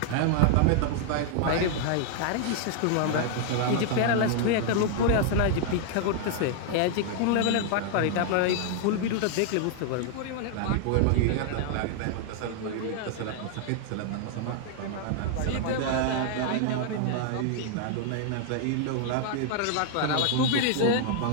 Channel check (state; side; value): different; both; correlation 0.00